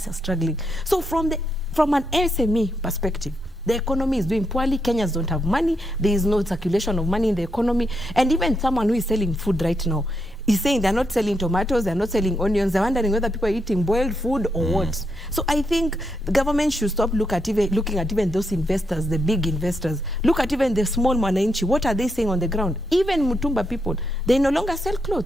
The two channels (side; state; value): both; normal; correlation 0.81